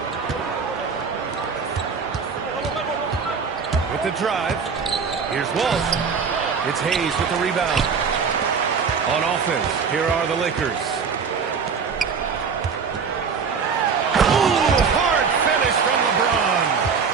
With the drive. Here's Walsh. It's Hayes with the rebound. On offense, here are the Lakers. Ooh, hard finish from LeBron.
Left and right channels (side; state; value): left; quieter; 5.8 dB